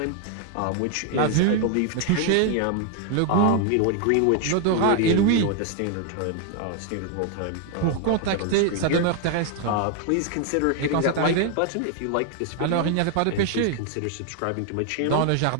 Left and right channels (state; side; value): different; both; correlation 0.00